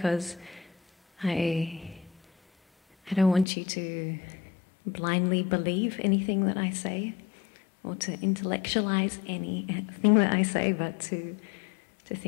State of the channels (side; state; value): right; drops out; at 3.5 s